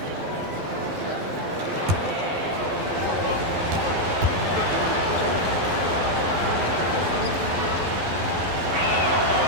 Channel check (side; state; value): left; late; 12 ms